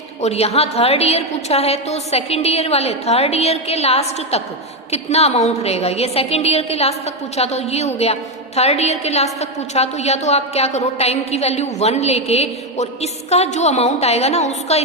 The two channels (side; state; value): both; normal; correlation 0.07